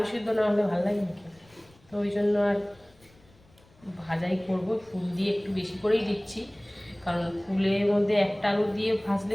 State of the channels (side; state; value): left; noise; rumble, 29 dB below the sound